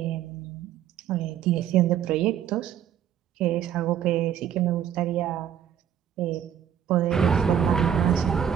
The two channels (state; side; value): quieter; left; 9.4 dB